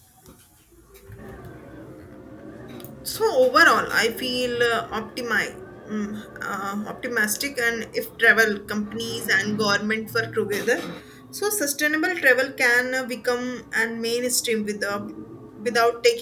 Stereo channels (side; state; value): both; identical; correlation 1.00